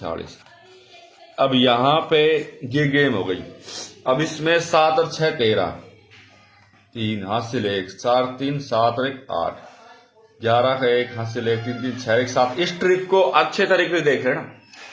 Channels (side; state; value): both; identical; correlation 1.00